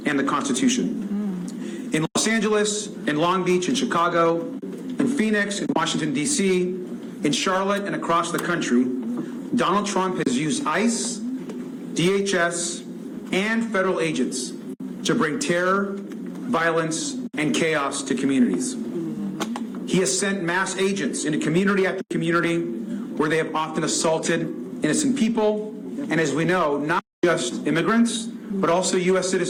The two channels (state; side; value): identical; both; correlation 1.00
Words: the Constitution. In Los Angeles, in Long Beach, in Chicago, in Phoenix, in Washington, D.C., in Charlotte, and across the country, Donald Trump has used ICE, DHS, and federal agents to bring terror, violence, and chaos to communities. He has sent mass agents into community after community where they have often assaulted innocent people, and as we know, not just immigrants, but also U.S.